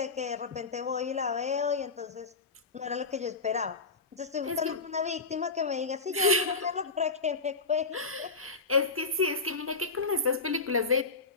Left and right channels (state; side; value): quieter; right; 4.1 dB